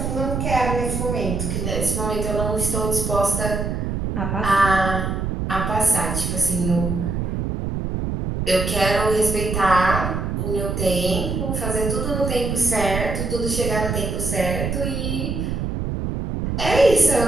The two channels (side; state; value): right; noise; rumble, 2 dB below the sound